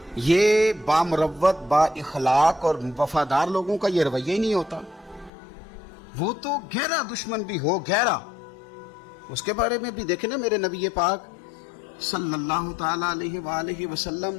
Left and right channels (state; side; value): drops out; right; at 5.3 s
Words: یہ بامروت با اخلاق اور وفادار لوگوں کا یہ رویہ ہی نہیں ہوتا. وہ تو گہرا دشمن بھی ہو گہرا. اس کے بارے میں بھی دیکھیں نا میرے نبی پاک صلی اللہ تعالی علیہ وآلہ وسلم